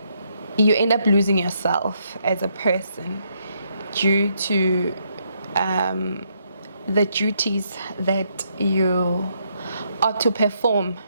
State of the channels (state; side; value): inverted; both; correlation -0.75